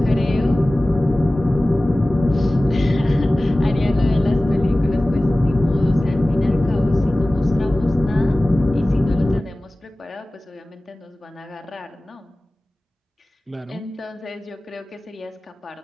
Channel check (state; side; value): normal; both; correlation 0.97